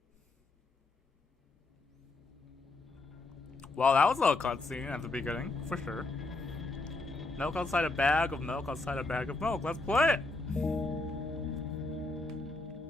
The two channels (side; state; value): right; quieter; 3.2 dB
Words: Well, that was a little cutscene at the beginning, for sure. Milk outside a bag of milk outside a bag of milk. Let's play it!